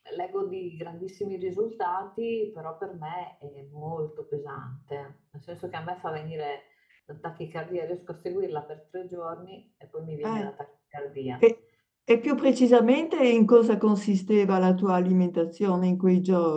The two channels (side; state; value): both; identical; correlation 1.00